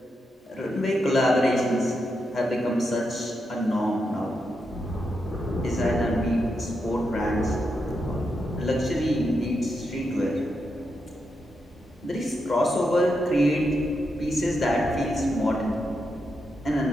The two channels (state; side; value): normal; both; correlation 0.84